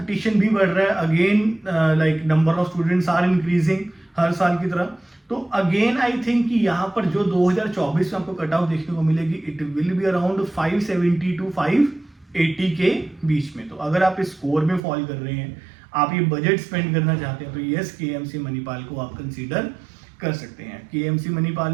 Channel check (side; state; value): left; drops out; at 14.8 s